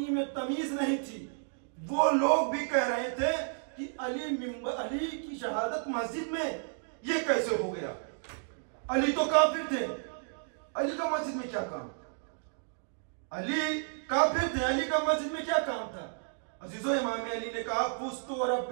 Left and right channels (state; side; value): silent; left; digital silence